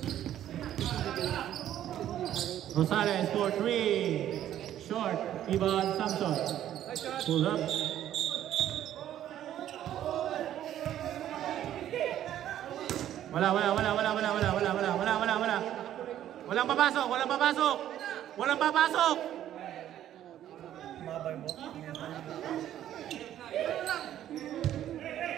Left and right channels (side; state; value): left; quieter; 11.6 dB